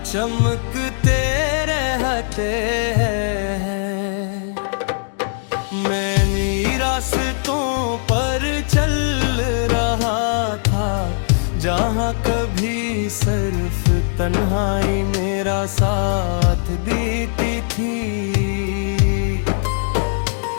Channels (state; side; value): silent; right; digital silence